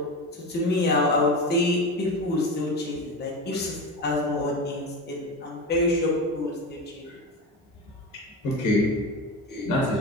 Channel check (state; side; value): normal; both; correlation 0.24